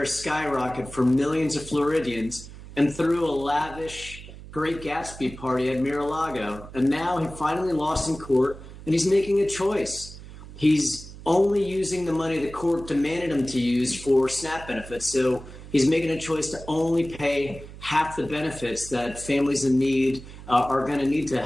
skyrocket for millions of Floridians and threw a lavish Great Gatsby party at Mar-a-Lago, and now he finally lost in court, and he's making a choice. He's only using the money the court demanded him to use for SNAP benefits, so he's making a choice to only pay half the benefits that families in need are going to need to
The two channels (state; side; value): noise; right; hum, 15 dB below the sound